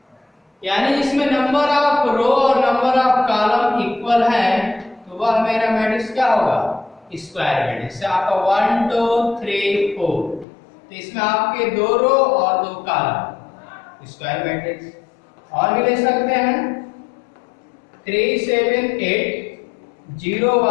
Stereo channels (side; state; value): right; drops out; at 10.5 s